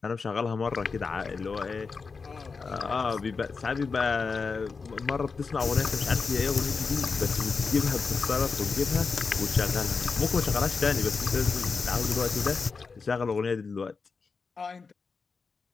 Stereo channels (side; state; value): right; quieter; 4.8 dB